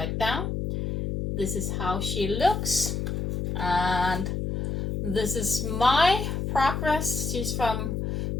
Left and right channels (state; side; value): noise; left; hum, 2 dB below the sound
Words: down. This is how she looks, and this is my progress. She's from